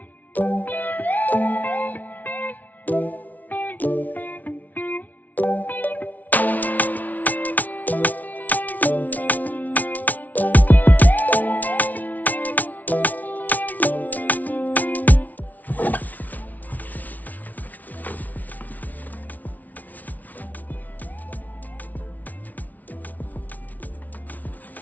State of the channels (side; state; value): right; late; 0.076 ms